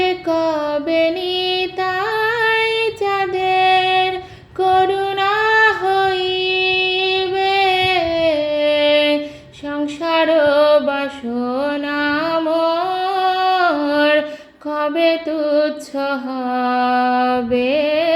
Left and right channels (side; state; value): both; identical; correlation 1.00